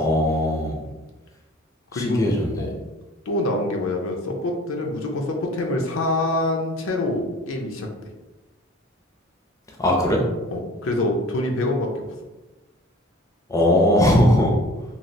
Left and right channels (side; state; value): both; normal; correlation 0.47